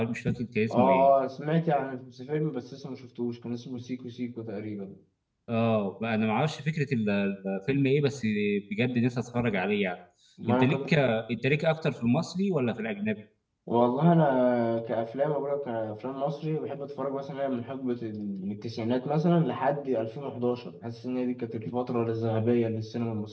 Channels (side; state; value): both; identical; correlation 1.00